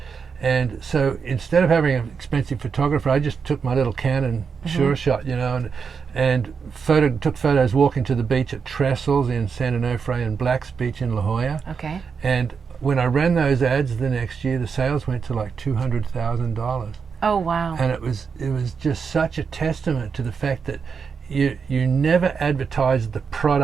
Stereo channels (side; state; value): left; quieter; 5.9 dB